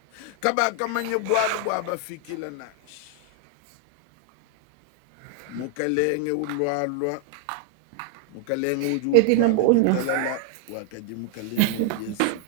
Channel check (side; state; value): both; different; correlation 0.00